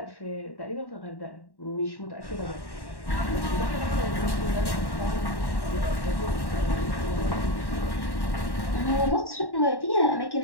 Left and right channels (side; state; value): right; late; 1.1 ms